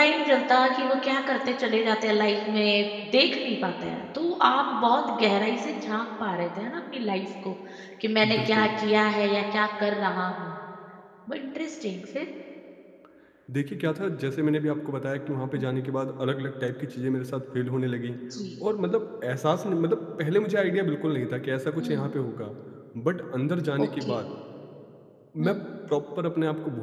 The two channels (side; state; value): both; identical; correlation 1.00